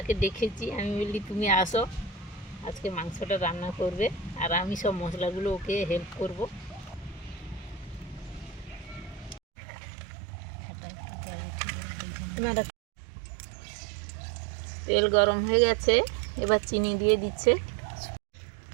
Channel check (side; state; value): left; drops out; at 9.4 s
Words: ডেকেছি, আমি বললি তুমি আসো, আজকে মাংসটা রান্না করবে, আর আমি সব মশলাগুলো ওকে হেল্প করব। তেল গরম হয়ে গেছে, এবার চিনি দিয়ে দিচ্ছে,